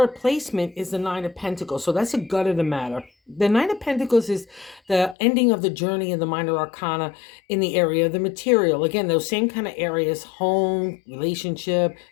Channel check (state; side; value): drops out; right; at 5.2 s